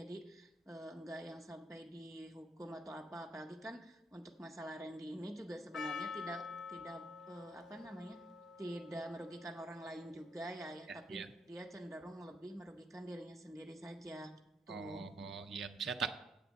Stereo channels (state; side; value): normal; both; correlation 0.77